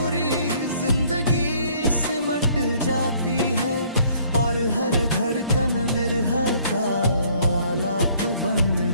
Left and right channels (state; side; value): inverted; both; correlation -0.61